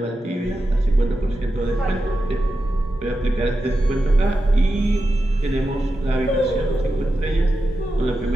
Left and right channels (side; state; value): both; normal; correlation 0.90